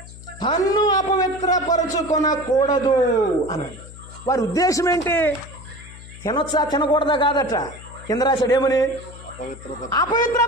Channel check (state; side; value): noise; left; hum, 17 dB below the sound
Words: తన్ను అపవిత్రపరచుకొనకూడదు అన్నాడు. వారి ఉద్దేశం ఏంటి, తినొచ్చా తినకూడదా కాదట. కింద రాశాడు ఏమని,